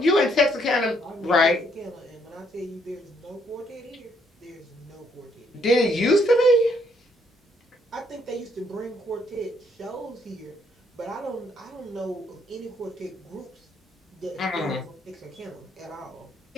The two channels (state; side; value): normal; both; correlation 0.70